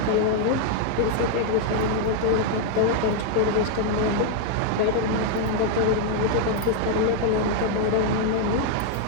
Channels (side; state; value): both; different; correlation 0.00